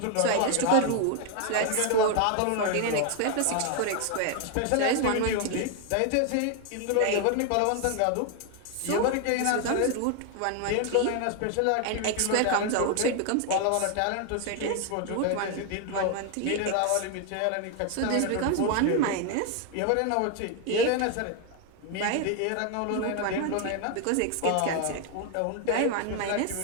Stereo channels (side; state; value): both; different; correlation 0.01